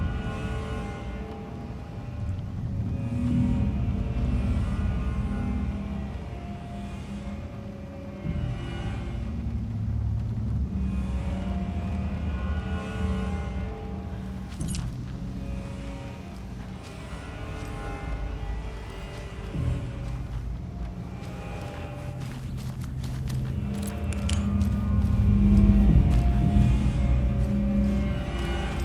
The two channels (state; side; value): identical; both; correlation 1.00